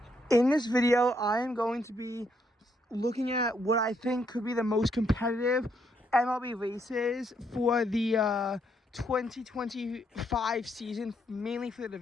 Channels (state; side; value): normal; both; correlation 0.74